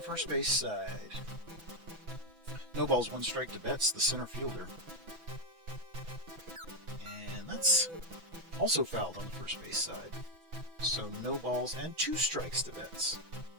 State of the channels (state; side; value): late; left; 6.0 ms